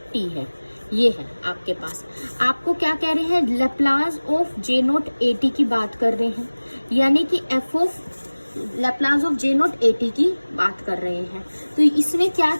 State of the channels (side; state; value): both; inverted; correlation -1.00